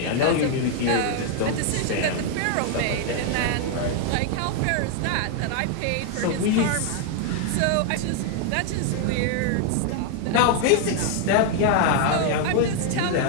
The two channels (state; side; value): different; both; correlation 0.00